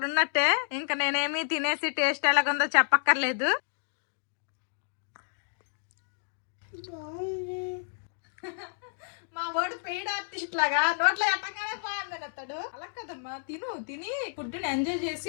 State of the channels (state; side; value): silent; right; digital silence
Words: ఉన్నట్టే. ఇంకా నేనేమి తినేసి టేస్ట్ ఎలాగుందో చెప్పక్కర్లేదు. మా వాడు పెయిడ్ ఆర్టిస్ట్ లాగా నోట్లో ఎట్టగానే బాగుందని అతడు. అలా కదమ్మా, తిని ఫుడ్ ని ఎంజాయ్